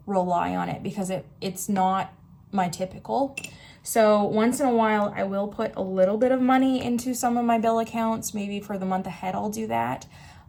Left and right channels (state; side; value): identical; both; correlation 1.00